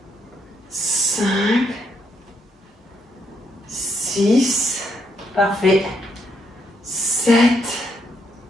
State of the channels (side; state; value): both; normal; correlation 0.76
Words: 5, 6, parfait. 7,